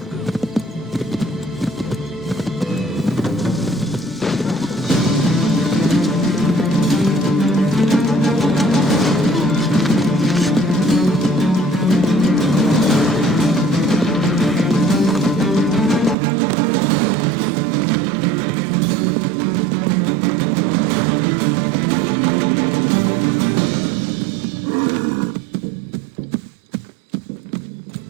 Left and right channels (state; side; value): drops out; left; at 16.2 s